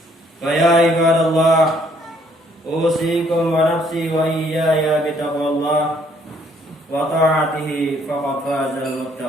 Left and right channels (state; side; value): normal; both; correlation 0.65